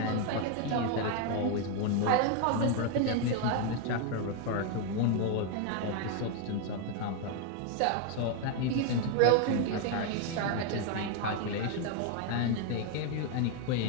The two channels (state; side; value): different; both; correlation 0.01